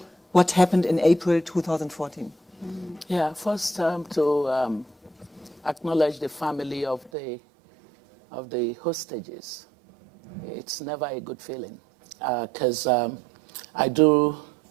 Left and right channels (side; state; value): left; drops out; at 7.1 s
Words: what happened in April 2014? Yeah, first to acknowledge the family of the hostages. It's never a good feeling because I do,